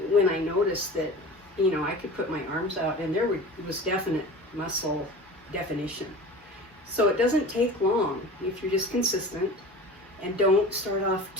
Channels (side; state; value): both; normal; correlation 0.37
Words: When I noticed that, you know, I could put my arms out and there was definite muscle definition. So it doesn't take long if you're just consistent, and don't start off